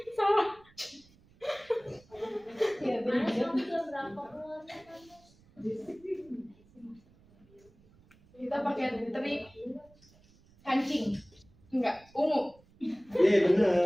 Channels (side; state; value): right; noise; rumble, 28 dB below the sound